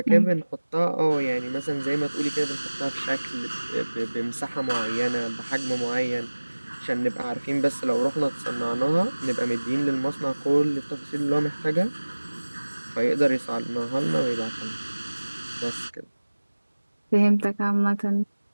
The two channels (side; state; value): both; inverted; correlation -1.00